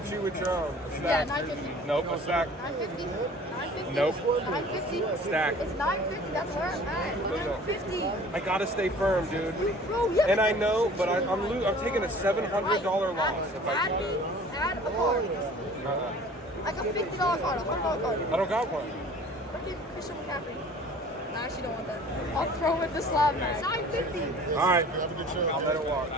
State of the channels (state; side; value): normal; both; correlation 0.47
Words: you with your own. A Yeah, stack. 950. Nope, a stack. 950. 950. 950. Nope. 950. Stack. It's 950. That's where I'm at. 950. I gotta stay firm, dude. Bro, yeah. And I know, but I'm taking a $700 loss. If Add a card. Like a $50 card, a $100 card. I don't got one. Freaking Christian McCaffrey. I actually don't want that. I'll throw it the slab man. 950. All right, I'll let it walk.